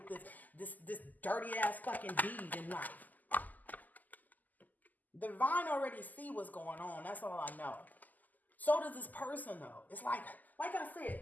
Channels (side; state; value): right; late; 0.082 ms